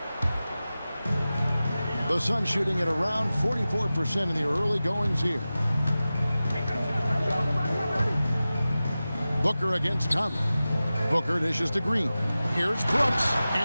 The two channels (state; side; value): inverted; both; correlation -0.95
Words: The Suns shooting at around 44% in the early goings here. Booker against Conley. Booker dishes to Green. Here's Brooks,